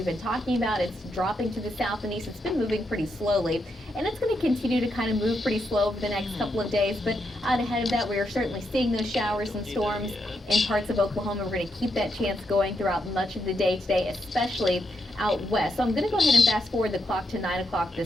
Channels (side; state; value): both; normal; correlation 0.82